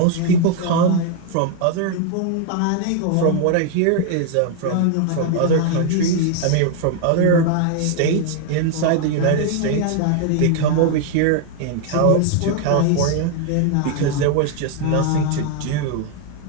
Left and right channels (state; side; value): different; both; correlation 0.00